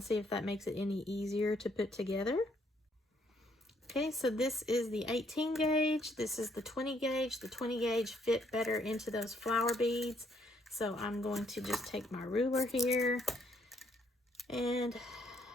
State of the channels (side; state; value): both; normal; correlation 0.69